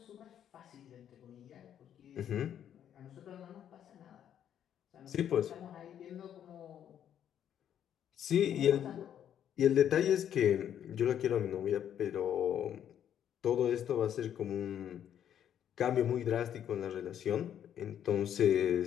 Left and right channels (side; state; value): right; quieter; 9.8 dB